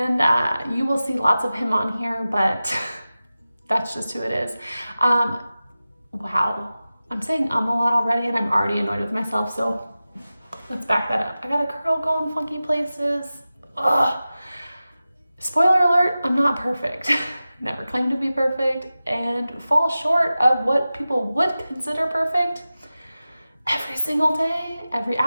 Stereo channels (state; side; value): inverted; both; correlation -0.95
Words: you will see lots of him on here, but that's just who it is. Wow, I'm saying a lot already, and I'm already annoyed with myself, so let's back that up. I got a curl going funky places. Ugh. Spoiler alert, I'm not perfect. Never claimed to be perfect, and fall short of what people would consider perfect every single day, every